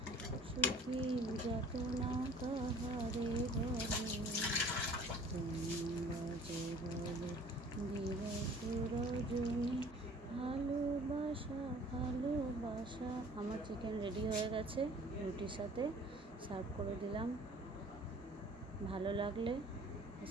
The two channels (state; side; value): normal; both; correlation 0.50